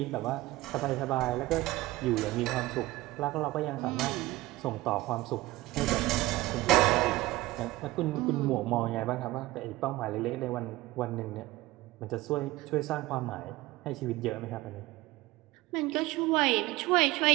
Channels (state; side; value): quieter; left; 18.6 dB